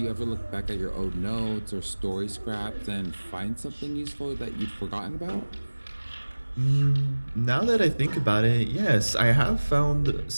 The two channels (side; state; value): both; inverted; correlation -1.00